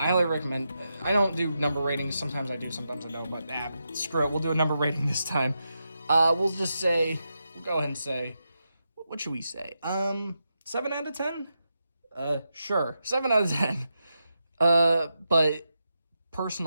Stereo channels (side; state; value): both; inverted; correlation -0.87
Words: highly recommend. I don't do number ratings. Sometimes I do, sometimes I don't, but screw it. We'll do a number rating this time. We'll go ahead and say, what should we say? 7 out of 10? Sure, 7 out of 10. But